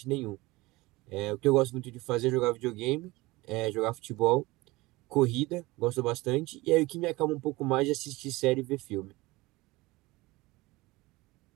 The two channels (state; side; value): quieter; left; 21.2 dB